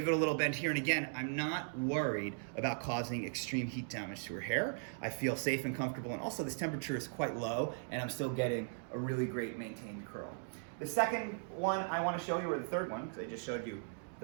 it a little bend here, and again, I'm not worried about causing extreme heat damage to her hair. I feel safe and comfortable, and also this temperature is quite low and I'm still getting a really great maintained curl. The second one I want to show you, or the third one, because I just showed you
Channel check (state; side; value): silent; left; digital silence